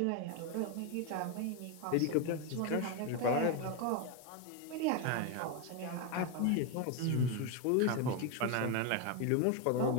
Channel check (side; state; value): both; different; correlation 0.02